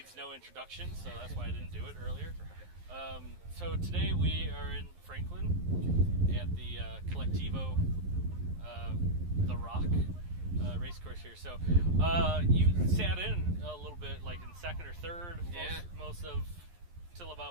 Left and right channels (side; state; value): left; late; 11 ms